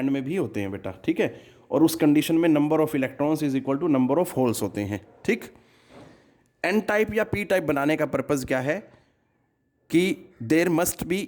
में भी होते हैं बेटा, ठीक है। और उस कंडीशन में number of electrons is equal to number of holes होते हैं, ठीक। एन टाइप या पी टाइप बनाने का पर्पज़ क्या है कि there must be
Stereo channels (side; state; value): both; identical; correlation 1.00